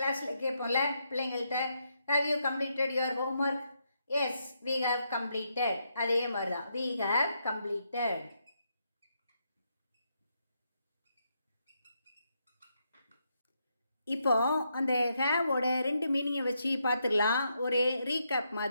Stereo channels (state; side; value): inverted; both; correlation -0.80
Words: கேட்போம்ல பிள்ளைங்கள்ட்ட, have you completed your homework? Yes, we have completed. அதே மாதிரி தான், we have completed. இப்போ அந்த ஹேவோட 2 மீனிங்கை வச்சு பார்த்துடலாம். ஒரு ரீகேப்